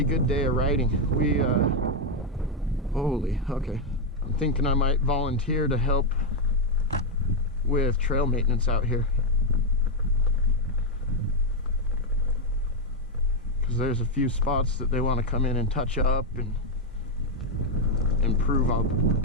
good day of riding. We, holy, okay. I'm thinking I might volunteer to help with trail maintenance out here. Because there's a few spots that they want to come in and touch up and improve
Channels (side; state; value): both; normal; correlation 0.02